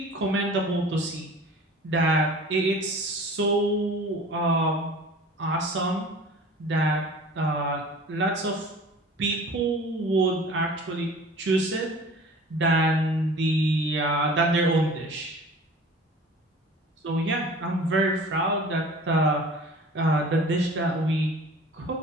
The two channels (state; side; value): normal; both; correlation 0.43